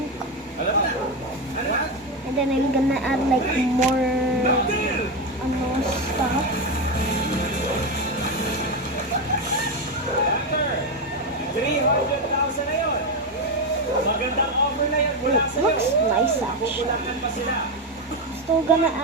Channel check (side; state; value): both; normal; correlation 0.11